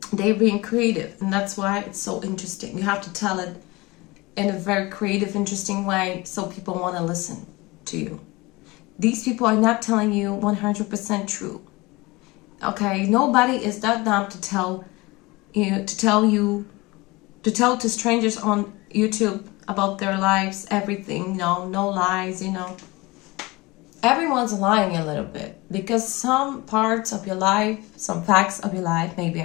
They're being creative, and that's why it's so interesting. You have to tell it in a very creative, interesting way so people want to listen to you. These people are not telling you 100% true. Okay, nobody is that dumb to tell to strangers on YouTube about their lives, everything, no lies, Everyone's lying a little bit because some parts of your life, some facts of your life may be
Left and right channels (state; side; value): quieter; right; 22.7 dB